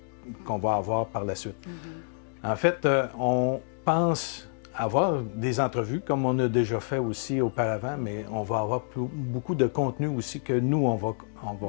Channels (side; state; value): right; silent; digital silence